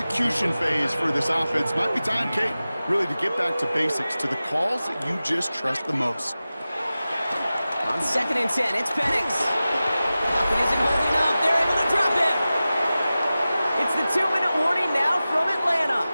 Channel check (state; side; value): inverted; both; correlation -0.95